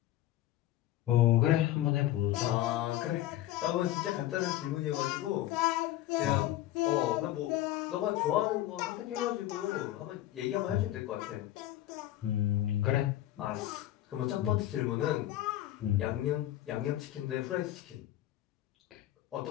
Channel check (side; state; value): right; quieter; 14.0 dB